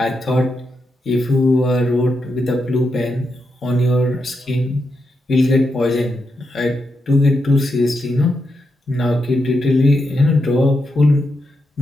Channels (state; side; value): normal; both; correlation 0.84